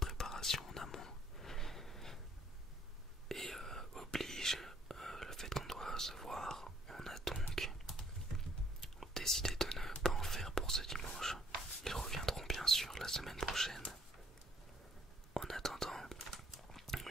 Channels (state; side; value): normal; both; correlation 0.65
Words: préparation en amont, et oblige le fait qu'on doit se voir, on a donc décidé de ne pas en faire pour ce dimanche. Ils reviendront bien sûr la semaine prochaine. En attendant,